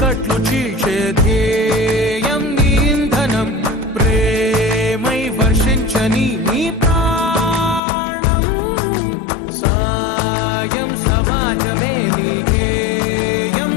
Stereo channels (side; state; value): right; drops out; at 7.8 s